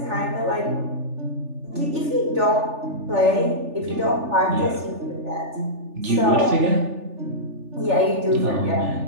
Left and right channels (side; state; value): left; late; 3.4 ms